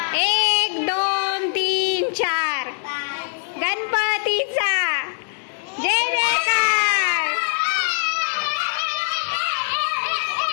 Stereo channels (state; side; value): silent; right; digital silence